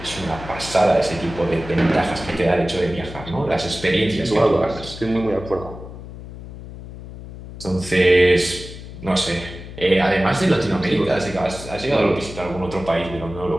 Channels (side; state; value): left; noise; hum, 13 dB below the sound